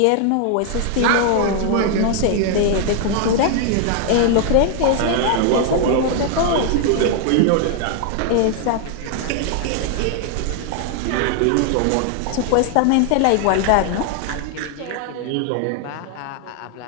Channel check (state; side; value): different; both; correlation 0.00